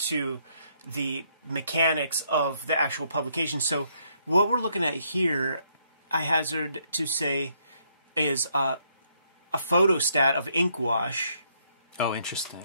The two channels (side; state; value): both; inverted; correlation -0.72